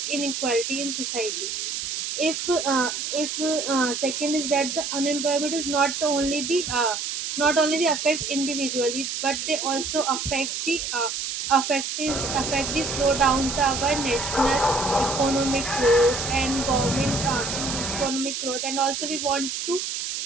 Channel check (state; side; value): noise; right; hiss, 3 dB below the sound